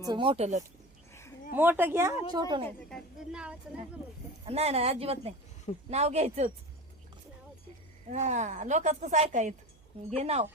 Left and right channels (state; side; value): noise; right; hum, 28 dB below the sound